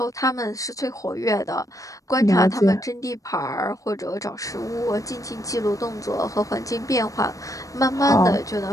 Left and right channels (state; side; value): late; right; 0.16 ms